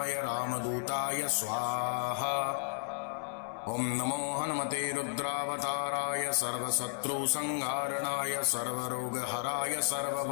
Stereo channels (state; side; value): silent; right; 56 dB below the other